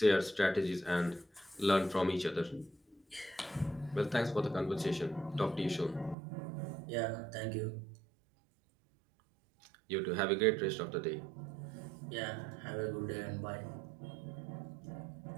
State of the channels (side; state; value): left; drops out; at 6.2 s